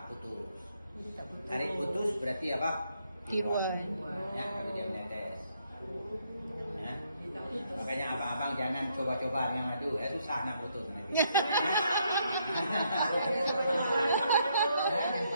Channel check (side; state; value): both; inverted; correlation -0.73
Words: putus. Tarik putus berarti apa? Tiruan. Ya, kalau dia menetes. Ya. Makanya abang-abang jangan coba-coba yang madu, susah nak putus nanti.